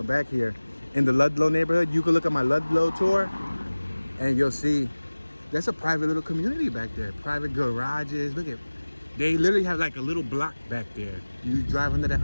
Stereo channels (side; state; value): both; inverted; correlation -1.00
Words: back here in the Ludlow neighborhood. You can look at my Ludlow tour and you'll see that's a private little community back there. Private garages. Look at, they literally have like a little block back there. You drive under that